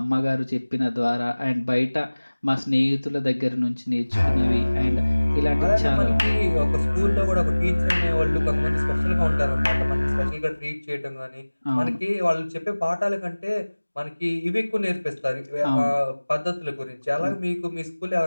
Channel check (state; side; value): inverted; both; correlation -1.00